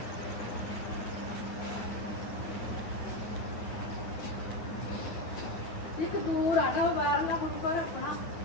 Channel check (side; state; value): right; late; 9.4 ms